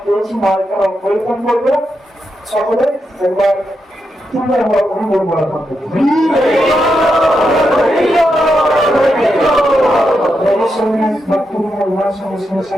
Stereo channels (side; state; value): both; normal; correlation 0.84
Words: পেয়েছি, মহাজকে আমরা পরিবর্তন করবো সকলে একবার তিনবার আমরা অনুভব করা থাকবো।